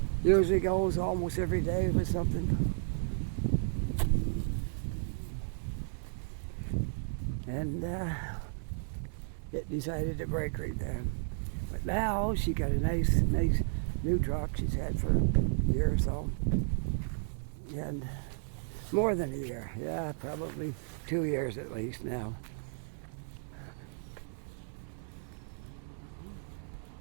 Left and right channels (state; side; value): silent; left; 55 dB below the other